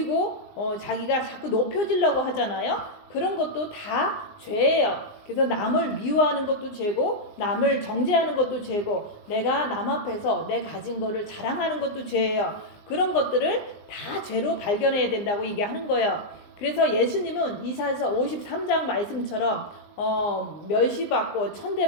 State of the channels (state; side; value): late; right; 19 ms